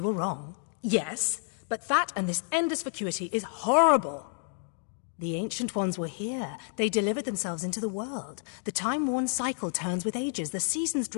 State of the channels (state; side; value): silent; right; 58 dB below the other